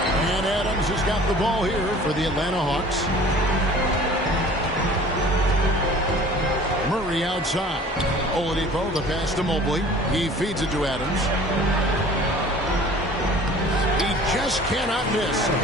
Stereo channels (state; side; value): normal; both; correlation 0.47